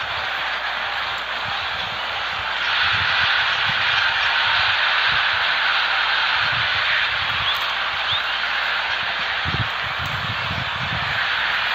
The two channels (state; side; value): noise; left; hum, 24 dB below the sound